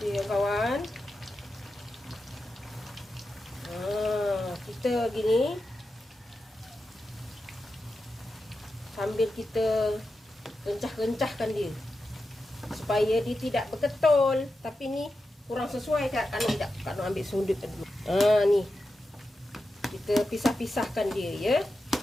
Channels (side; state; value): both; normal; correlation 0.90